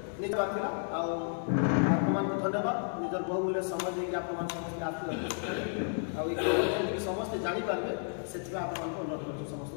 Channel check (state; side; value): silent; right; 56 dB below the other